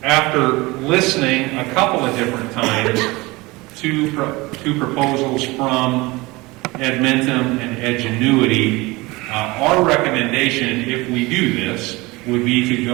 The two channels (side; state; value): left; quieter; 22.5 dB